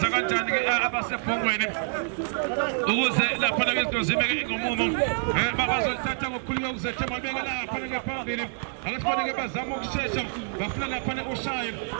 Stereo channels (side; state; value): left; silent; 60 dB below the other